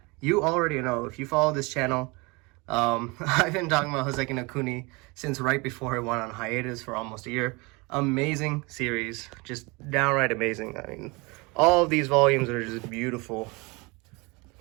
You already know, if you follow this channel, I've been talking about Hoseki no Kuni since right before it went on hiatus for almost a year. Amazing series. Just downright amazing. I mean, all of these volumes are just beautiful.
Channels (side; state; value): left; quieter; 26.7 dB